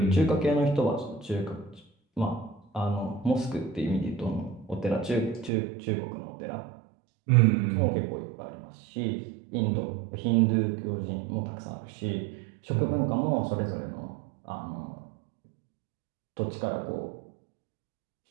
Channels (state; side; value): drops out; left; at 5.5 s